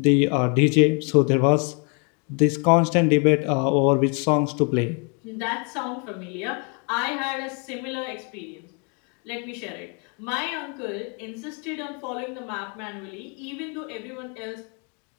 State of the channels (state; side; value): quieter; right; 36.0 dB